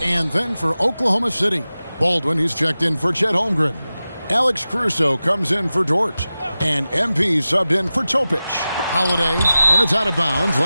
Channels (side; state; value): both; inverted; correlation -0.95